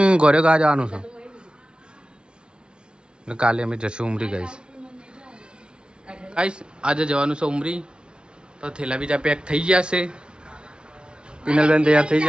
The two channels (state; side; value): late; left; 0.055 ms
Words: ગોરે ગા જવાનું છે. ને કાલે અમે જશું ઉમરી ગાઈશ. ગાઈશ આજે જવાનું છે ઉમરી, તો થેલા બીજા પેક થઈ ગયા છે. પિનલબેન તૈયાર થઈ